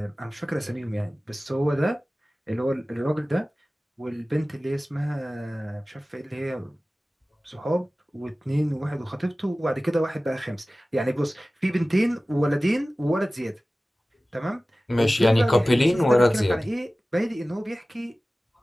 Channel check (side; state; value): both; normal; correlation 0.97